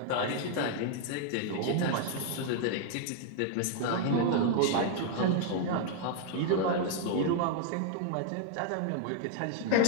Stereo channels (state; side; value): different; both; correlation 0.00